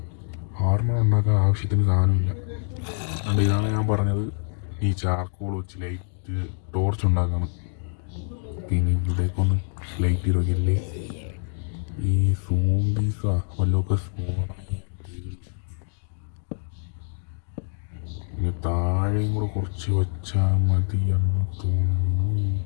ആർമർ ഉണ്ടാക്കാൻ ആവശ്യത്തിന് സാധനമില്ല. അതുകൊണ്ട് ഇതാണ് ഞാൻ പറഞ്ഞത്, ഈ ചാർക്കോൾ വെച്ച് ലൈറ്റ് ടോർച്ച് ഉണ്ടാക്കണം. പിന്നെ ഇവിടേക്കൊന്ന് ലൈറ്റ് ചെയ്തൊക്കെയല്ലേ ഈ സോംബീസാ വല്ലതൊക്കെ ഇനി താഴെയും കൂടെ കുറച്ച് വെച്ചാൽ മതിയെന്ന് തോന്നുന്നു.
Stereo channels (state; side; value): silent; right; digital silence